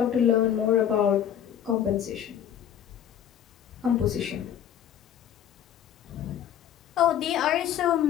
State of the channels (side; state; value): right; quieter; 9.9 dB